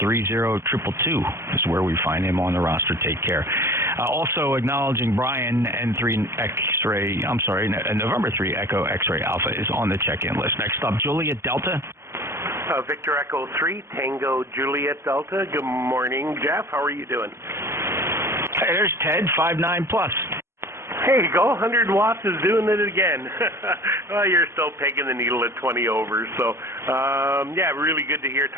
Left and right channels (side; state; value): left; late; 0.13 ms